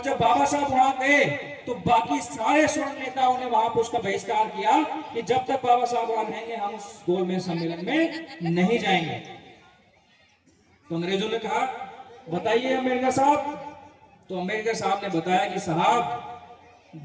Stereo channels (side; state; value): both; identical; correlation 1.00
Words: जब बाबा साहब वहां गए तो बाकी सारे स्वर्ण नेताओं ने वहां पर उसका बहिष्कार किया कि जब तक बाबा साहब वहां रहेंगे हम उस गोलमेज सम्मेलन में नहीं जाएंगे। तो अंग्रेजों ने कहा बताइए अमेरिका साहब। तो अमेरिका साहब ने बताया कि साहब